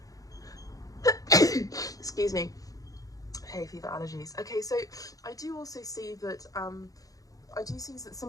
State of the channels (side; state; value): right; late; 0.17 ms